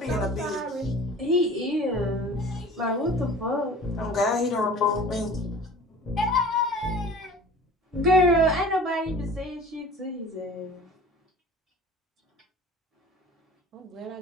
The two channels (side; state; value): both; normal; correlation 0.42